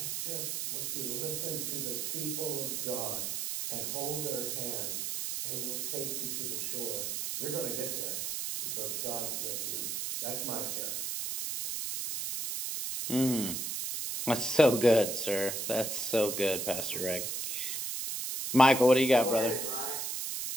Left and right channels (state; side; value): noise; right; hiss, 2 dB below the sound